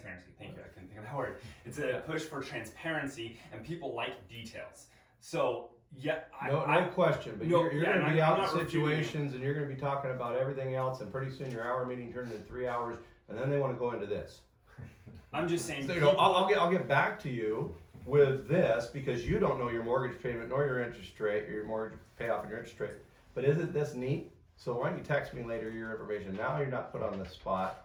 Thank you, I couldn't think of that word. It's a push for transparency, and people like details. So yeah, No question, but No, you're yeah, gonna and be I'm out in not refuting situations and you're gonna be talking about everything else, and pretty soon your hour meeting turned into 3 hours, and then they wanna go into this. I'm just saying. So, I'll get back to you with this because you don't know your mortgage payment nor your interest rate, your mortgage payoff and your interest rate. But isn't this neat? So why don't you text me later your information? Now you're not put on the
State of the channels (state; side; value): identical; both; correlation 1.00